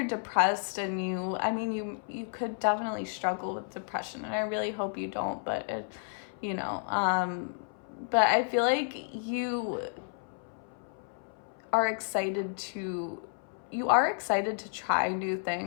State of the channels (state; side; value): silent; right; 57 dB below the other